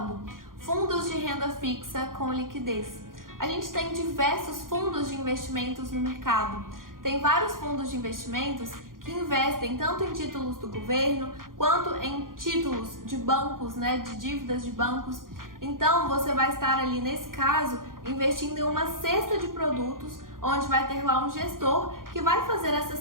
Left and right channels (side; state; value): left; late; 0.90 ms